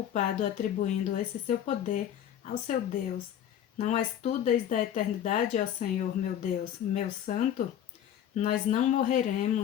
atribuindo esse seu poder ao seu Deus. Não és tu desde a eternidade, ó Senhor, meu Deus, meu santo? Nós não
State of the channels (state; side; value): quieter; right; 10.2 dB